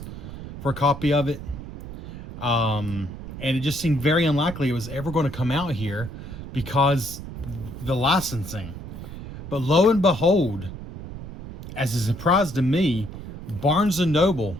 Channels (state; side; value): noise; right; rumble, 11 dB below the sound